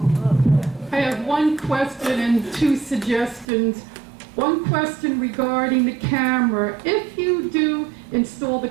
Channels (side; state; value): left; drops out; at 3.5 s